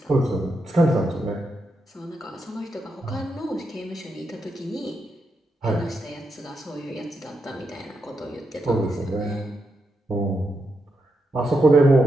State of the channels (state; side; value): normal; both; correlation 0.84